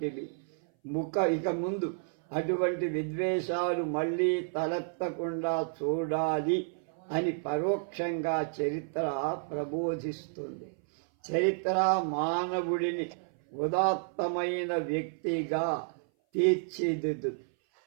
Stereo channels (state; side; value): silent; left; 57 dB below the other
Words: ఇక ముందు అటువంటి విద్వేషాలు మళ్ళీ తలెత్తకుండా చూడాలి అని పరోక్షంగా చరిత్ర ప్రబోధిస్తుంది. చరిత్ర మానవుడిని ఉదాత్తమైన వ్యక్తిగా తీర్చిదిద్దు.